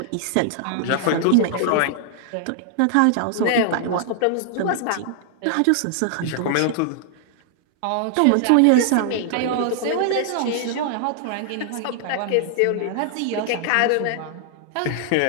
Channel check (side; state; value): both; different; correlation -0.01